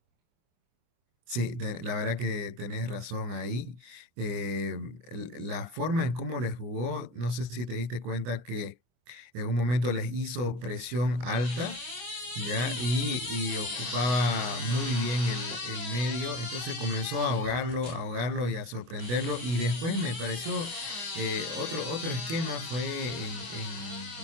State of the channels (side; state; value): left; late; 25 ms